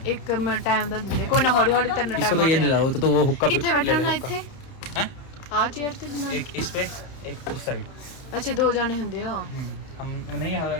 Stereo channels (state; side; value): late; right; 30 ms